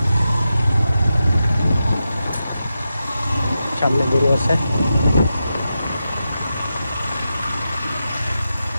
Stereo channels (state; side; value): inverted; both; correlation -0.89